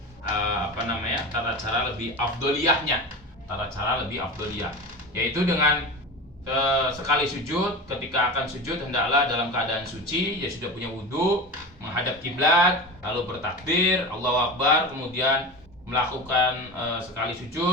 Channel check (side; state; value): both; normal; correlation 0.28